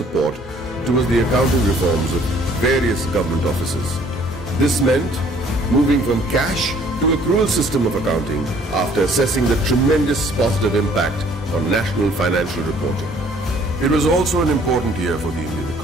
towards the accounting reforms of various government offices. This meant moving from cash to accrual system of accounting after assessing the tremendous positive impact on national financial reporting. It was also an important year for the Indian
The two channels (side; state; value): both; normal; correlation 0.58